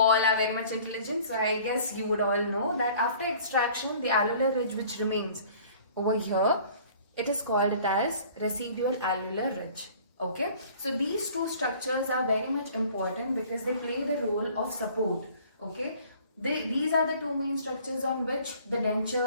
are very much intelligent, so I guess you would all know that after extraction, the alveolar ridge which remains over here, it is called it as residual alveolar ridge. Okay, so these two structures are very much important because they play the role of support. Okay, these are the two main structures on which the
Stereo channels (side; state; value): both; inverted; correlation -0.51